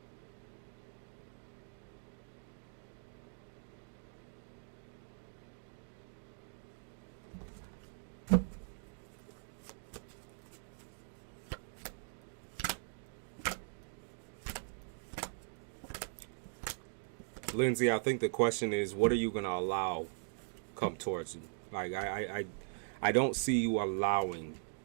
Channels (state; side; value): silent; left; digital silence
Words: Lindsay, I think the question is, what are you going to allow come towards you? Like, I don't see you allowing